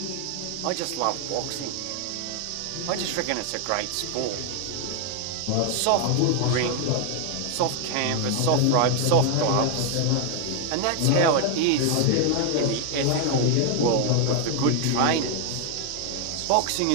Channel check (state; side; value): different; both; correlation 0.00